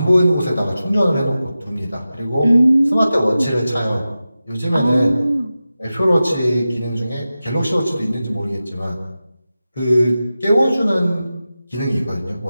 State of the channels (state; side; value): inverted; both; correlation -0.94